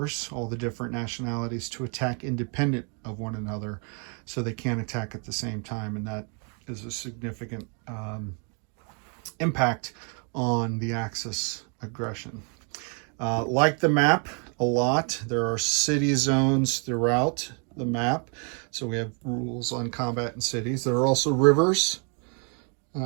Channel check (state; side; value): quieter; left; 38.3 dB